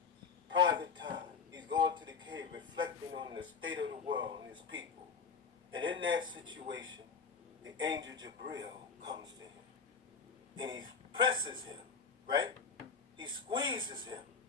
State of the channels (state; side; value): quieter; right; 5.6 dB